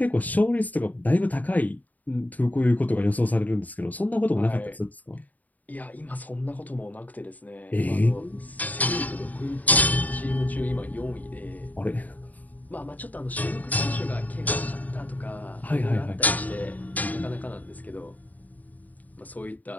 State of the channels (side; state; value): right; late; 0.078 ms